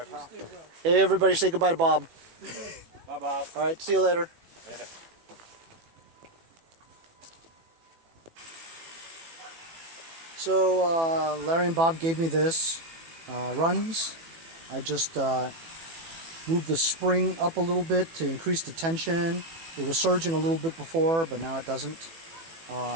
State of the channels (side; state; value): left; late; 18 ms